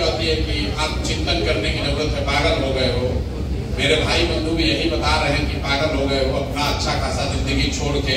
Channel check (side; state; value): both; identical; correlation 1.00